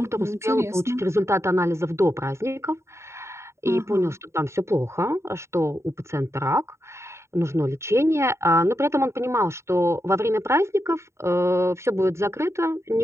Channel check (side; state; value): left; late; 0.13 ms